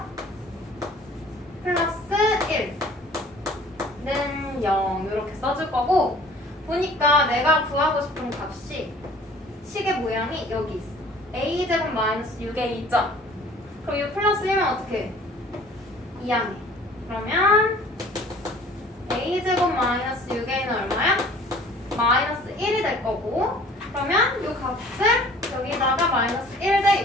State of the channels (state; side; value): normal; both; correlation 0.50